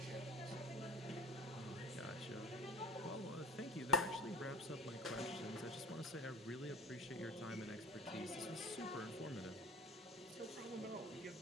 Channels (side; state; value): both; normal; correlation 0.39